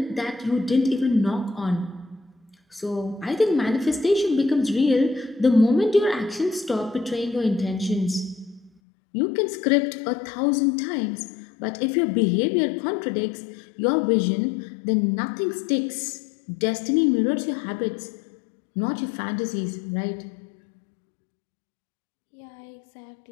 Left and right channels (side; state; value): right; drops out; at 8.7 s